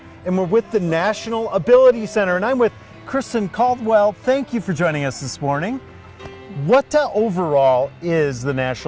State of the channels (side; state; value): both; identical; correlation 1.00